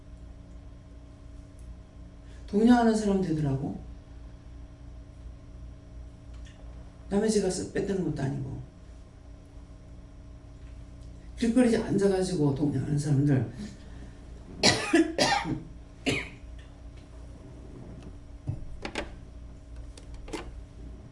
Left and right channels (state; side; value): identical; both; correlation 1.00